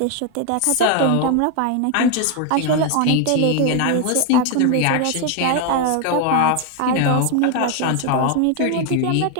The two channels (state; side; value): different; both; correlation 0.01